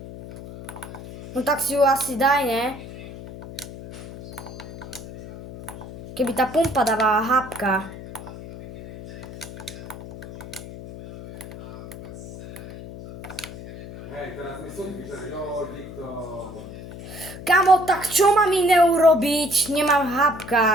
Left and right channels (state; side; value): noise; left; hum, 13 dB below the sound